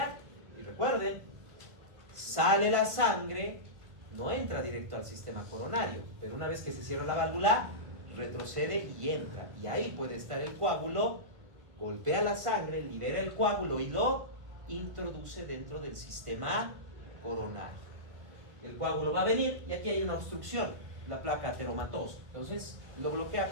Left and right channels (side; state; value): left; late; 1.5 ms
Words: Y recuerden, sale la sangre, no entra directo al sistema coronario, pero una vez que se cierra la válvula, retrocede y entra. Y ahí puede estar el coágulo, golpea la sangre, libera el coágulo y lo introduce dentro del sistema coronario. El coágulo va a venir y aquí hay una obstrucción, la placa ateromatosa. Entonces lo bloquea